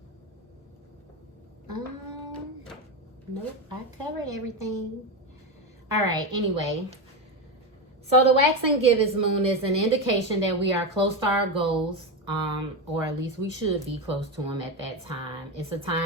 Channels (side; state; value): both; normal; correlation 0.14